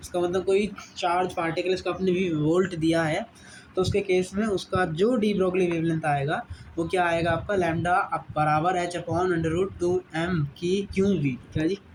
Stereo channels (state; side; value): identical; both; correlation 1.00